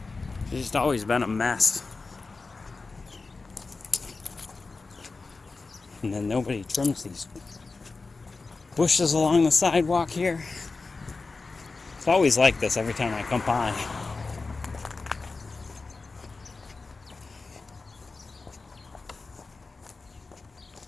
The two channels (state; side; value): quieter; right; 4.0 dB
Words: It's just always been a mess. And then nobody trims these bushes along the sidewalk here. It's always like this every time I come by. I